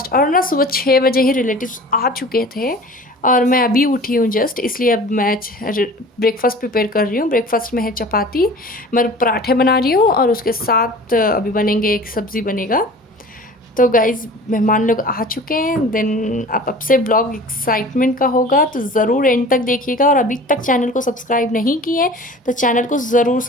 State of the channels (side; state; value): both; normal; correlation 0.42